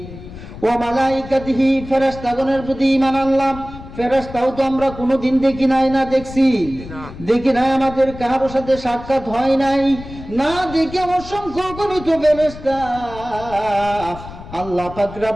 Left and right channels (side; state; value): left; noise; rumble, 14 dB below the sound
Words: ওয়া মালাইকাতিহি, ফেরেশতাগণের প্রতি ঈমান আনলাম। ফেরেশতাও তো আমরা কোনোদিন দেখি নাই, না দেখছি? দেখি নাই, আমাদের কারোর সাথে সাক্ষাৎ হয় নাই। না দেখে অসংখ্য গণিত ফেরেশতা আল্লাহ পাক